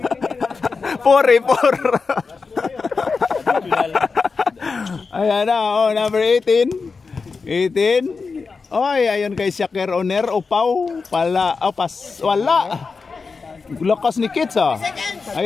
Ayan na, number 18. Oy, ayun kay Shakir Oner. Upaw. Wala. Lakas ni Kits ah.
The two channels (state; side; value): quieter; right; 4.7 dB